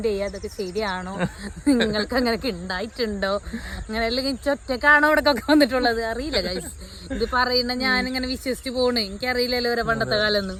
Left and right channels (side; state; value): both; identical; correlation 1.00